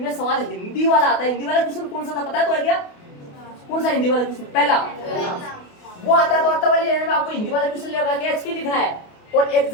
सवाल हिंदी वाला आता है। हिंदी वाला क्वेश्चन कौन सा था पता है तो है क्या? कौन सा हिंदी वाला क्वेश्चन? पहला वो आता है, तो अत्ता वाली लाइन में आपको हिंदी वाला क्वेश्चन लगा के एचपी लिखना है। और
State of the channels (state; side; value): late; right; 28 ms